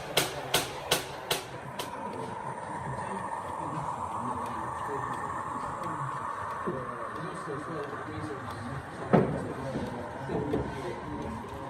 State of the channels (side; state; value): both; identical; correlation 1.00